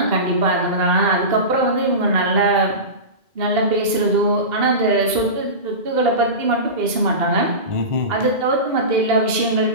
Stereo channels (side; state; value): left; late; 2.1 ms